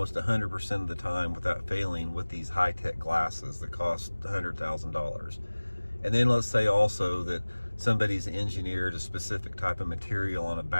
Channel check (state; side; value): inverted; both; correlation -1.00